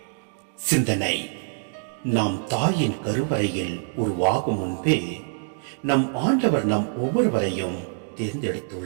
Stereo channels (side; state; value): left; silent; 62 dB below the other